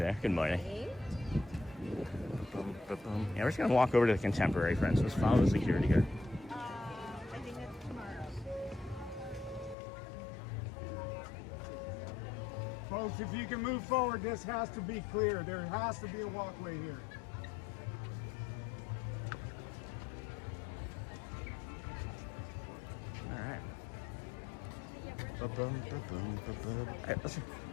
Good morning. Yeah, we're just gonna walk over to the Contemporary, friends. Let's follow the security guard. I think that's tomorrow. Folks, if you can move forward, this has to be clear. There has to be a walkway here. All right.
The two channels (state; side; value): drops out; right; at 9.8 s